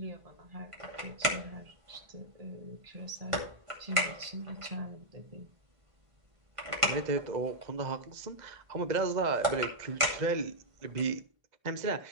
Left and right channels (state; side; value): late; left; 1.5 ms